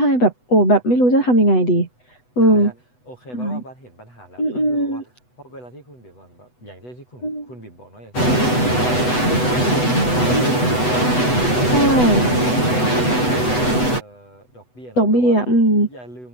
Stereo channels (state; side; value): late; right; 8.1 ms